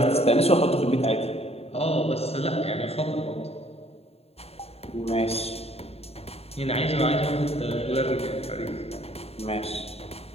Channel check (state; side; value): late; right; 0.29 ms